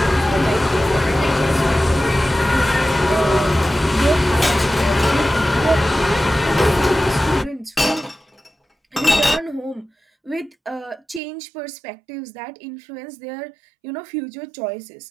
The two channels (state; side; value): drops out; left; at 11.2 s